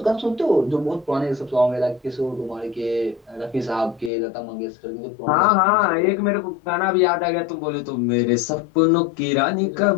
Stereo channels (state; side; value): drops out; right; at 4.1 s